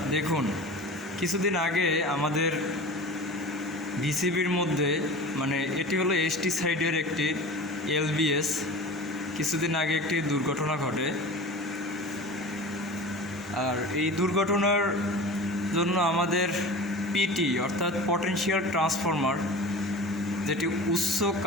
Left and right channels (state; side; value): normal; both; correlation 0.35